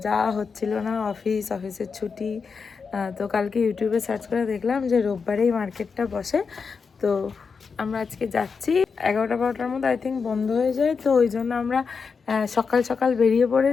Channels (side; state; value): right; quieter; 5.4 dB